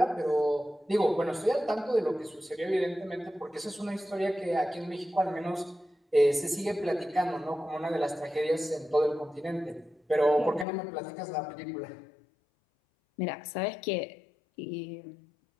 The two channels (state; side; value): drops out; right; at 10.7 s